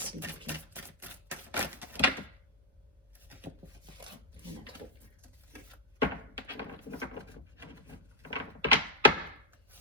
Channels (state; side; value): normal; both; correlation -0.08